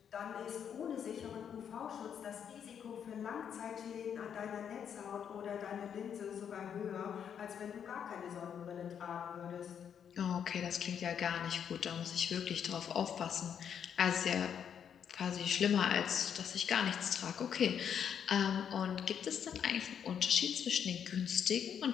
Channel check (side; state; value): right; quieter; 8.2 dB